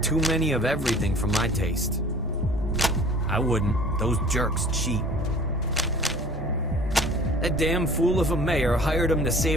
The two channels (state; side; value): normal; both; correlation 0.47